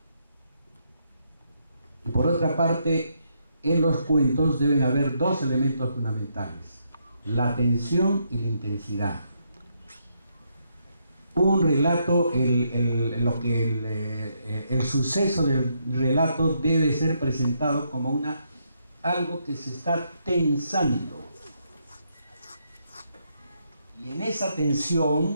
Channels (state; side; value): inverted; both; correlation -0.77